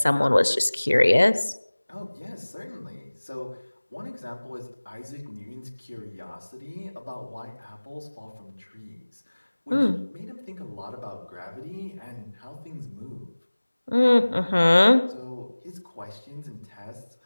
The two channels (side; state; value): both; inverted; correlation -1.00